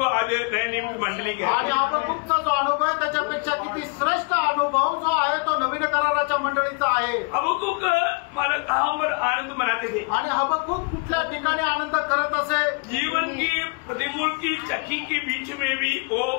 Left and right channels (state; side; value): quieter; right; 32.2 dB